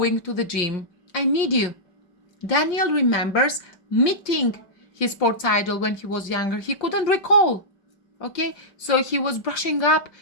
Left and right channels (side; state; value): right; late; 5.6 ms